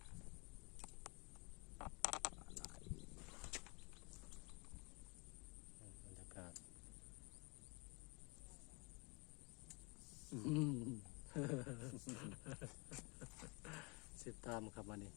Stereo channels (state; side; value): quieter; right; 30.3 dB